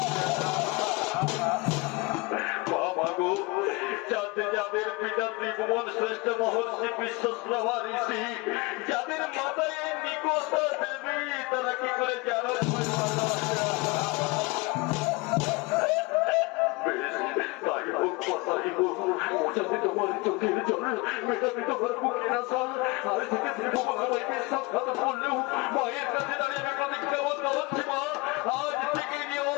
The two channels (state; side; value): quieter; right; 25.3 dB